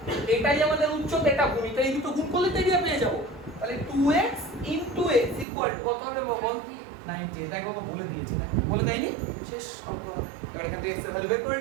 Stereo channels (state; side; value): drops out; left; at 5.5 s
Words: এটাই আমাদের উচ্চতা, এটা ভূমিটা, এই দুটো গুণ করলে তো এরিয়া পেয়ে যাবো। তাহলে 2x * x ইকুয়াল টু কত হবে বল? 90। দেখো বলে দিয়েছি না, বলে দেয়নি? শেষ অঙ্ক। এবার এখান থেকে x এর ভ্যালু বের করে